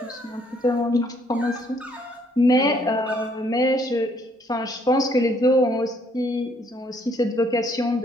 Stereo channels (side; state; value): both; normal; correlation 0.67